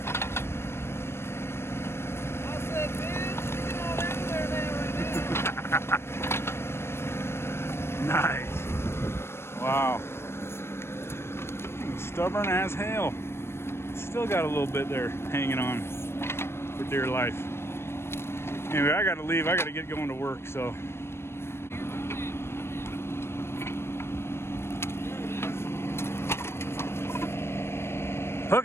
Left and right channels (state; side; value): late; right; 0.12 ms